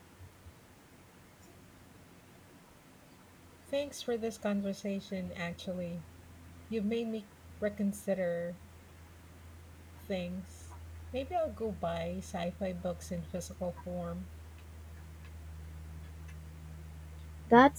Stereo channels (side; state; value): both; identical; correlation 1.00